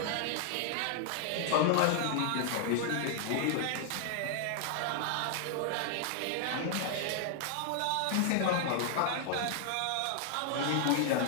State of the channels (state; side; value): different; both; correlation 0.00